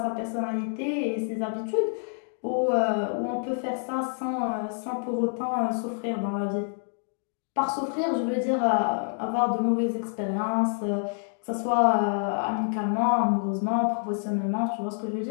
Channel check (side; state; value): right; silent; 60 dB below the other